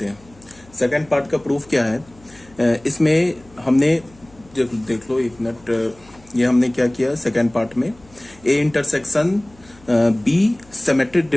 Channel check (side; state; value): left; noise; hum, 27 dB below the sound